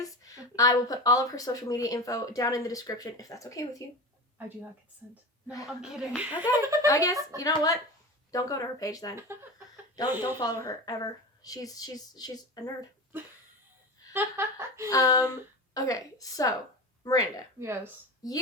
I will put all of her social media info down in the description if that's okay with you. I do not consent. No, I'm kidding. Okay. I guess, you know what? Don't go to her page then. Don't follow her ever. She's a nerd. Okay, so Miranda. Yes.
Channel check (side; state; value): both; normal; correlation 0.27